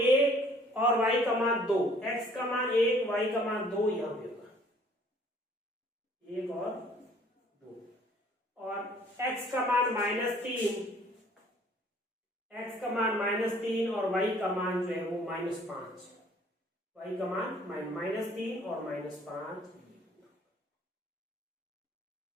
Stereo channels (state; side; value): normal; both; correlation 0.57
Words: और y का मान 2, x का मान 1 y का मान 2 यहाँ पे होगा 1 और 2। और x का मान -3, x का मान -3 और y का मान जो है वो -5, y का मान -3 और -5।